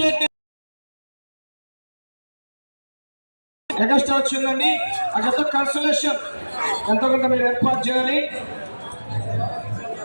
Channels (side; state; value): both; inverted; correlation -1.00